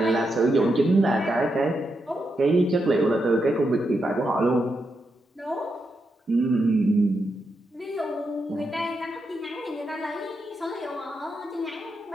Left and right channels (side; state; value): both; normal; correlation 0.84